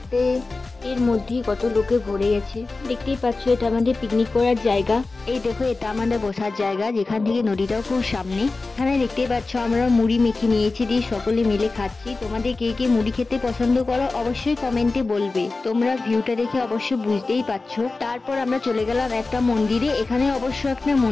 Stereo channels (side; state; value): right; quieter; 3.6 dB